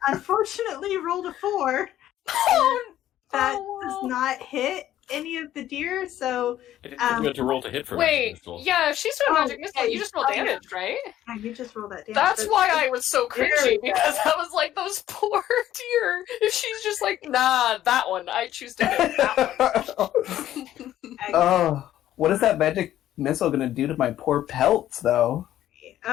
unfortunately rolled a 4. That does not hit any of the deer, so... I didn't think you had to roll to hit for Wait, Magic Missile. yeah, if she's doing Magic Missile, you just roll damage, right? Yeah, you just roll that damage. That's why I was so cringy, because I was like, those poor deer. If she's just like, nah, that one, I choose to hit that one. Oh, what is that magic missile going to do to my poor pelts, though?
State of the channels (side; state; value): right; quieter; 12.6 dB